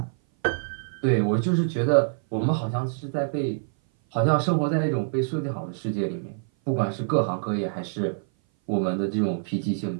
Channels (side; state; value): left; silent; 57 dB below the other